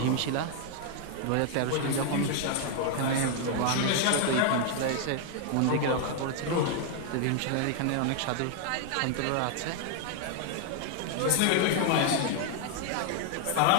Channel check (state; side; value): different; both; correlation 0.00